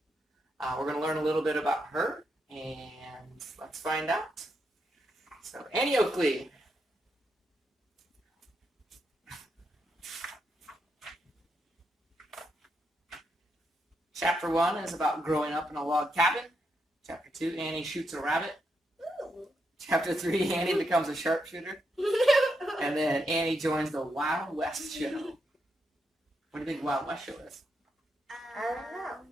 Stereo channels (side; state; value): both; normal; correlation 0.82